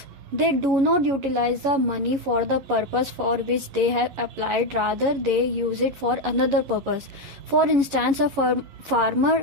They do not utilize the money for the purpose for which they have applied, rather they use it for another purpose. For instance, a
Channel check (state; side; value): late; left; 11 ms